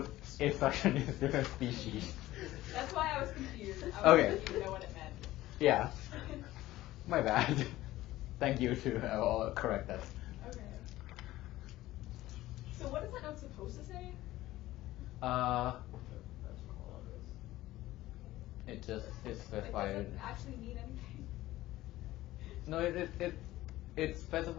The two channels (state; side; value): quieter; right; 16.2 dB